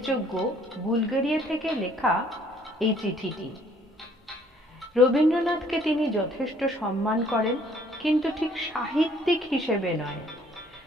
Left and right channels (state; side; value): normal; both; correlation 0.61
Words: বুলগেরিয়া থেকে লেখা এই চিঠিটি। রবীন্দ্রনাথকে তিনি যথেষ্ট সম্মান করেন, কিন্তু ঠিক সাহিত্যিক হিসেবে নয়,